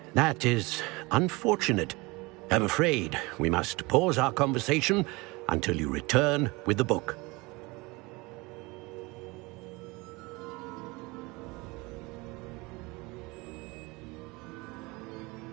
That is unfortunate. I'm afraid we must pause our conversation until you return with the book.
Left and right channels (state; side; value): quieter; left; 24.4 dB